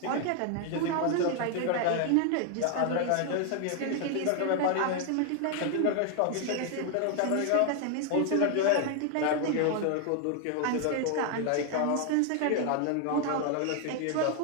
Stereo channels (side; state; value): both; different; correlation 0.00